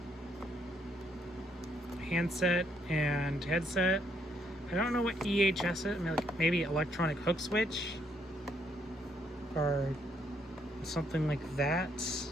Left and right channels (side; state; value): both; normal; correlation 0.72